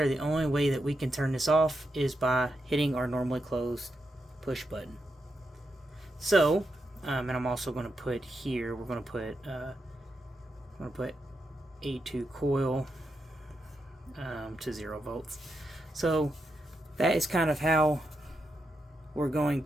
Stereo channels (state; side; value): normal; both; correlation 0.85